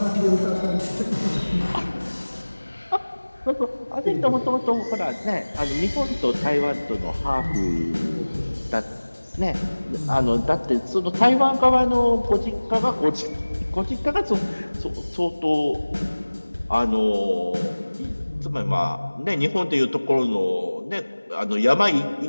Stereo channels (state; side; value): inverted; both; correlation -1.00